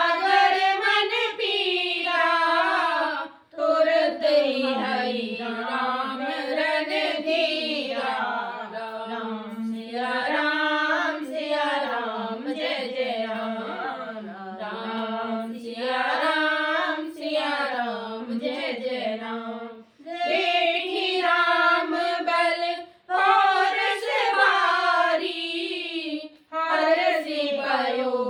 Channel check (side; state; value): both; identical; correlation 1.00